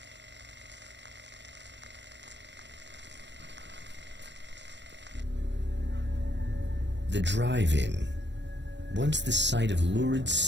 The drive-in. Once the site of lurid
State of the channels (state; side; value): late; left; 0.52 ms